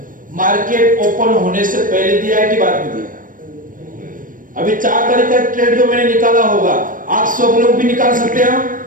मार्केट ओपन होने से पहले दिया है कि बाद में दिया है। अभी 4 तारीख का ट्रेड जो मैंने निकाला होगा आप सब लोग भी निकाल सकते हैं।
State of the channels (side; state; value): left; late; 0.39 ms